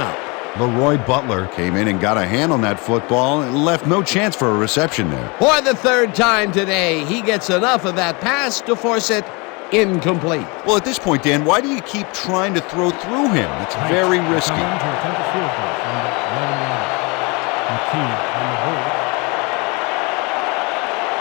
Leroy Butler came in and got a hand on that football and left no chance for a reception there. For the third time today, he gets enough of that pass to force it incomplete. Well, at this point, Dan, why do you keep trying to throw through him? It's very risky. To attempt a field goal from the 11-yard. McKee on the hold.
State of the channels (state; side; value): quieter; right; 28.8 dB